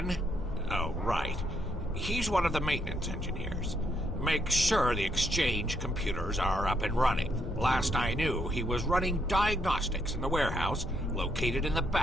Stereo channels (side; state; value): both; normal; correlation 0.75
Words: Oh, right. He's one of the maintenance engineers. Make sure the exchange computers are up and running. Last I knew, he was running diagnostics in the warehouse located in the